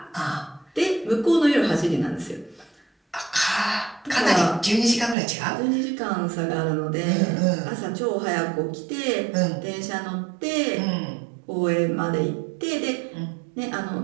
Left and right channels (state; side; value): drops out; left; at 5.2 s